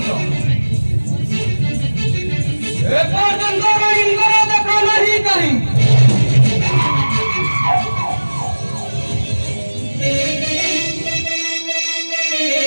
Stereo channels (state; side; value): inverted; both; correlation -1.00